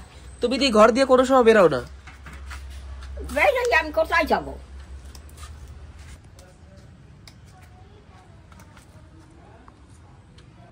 তুমি তো ঘর দিয়ে কোনো সময় বেরো না। বেরোই, আমি কোথায় যাবো?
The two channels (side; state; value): both; identical; correlation 1.00